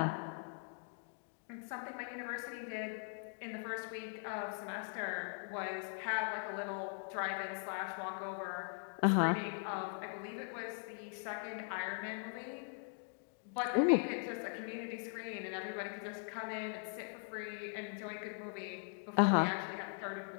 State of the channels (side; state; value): right; silent; 51 dB below the other